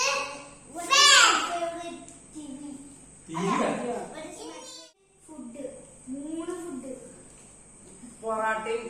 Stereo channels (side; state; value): both; identical; correlation 1.00